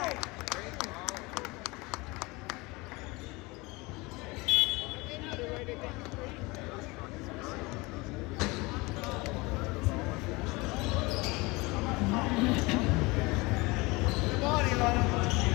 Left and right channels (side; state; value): right; quieter; 24.3 dB